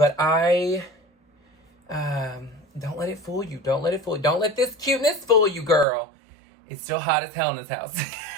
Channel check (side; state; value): left; drops out; at 5.9 s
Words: I don't let it fool you. Don't let it fool you. Don't let this cuteness fool you, girl. It's still hot as hell in this house.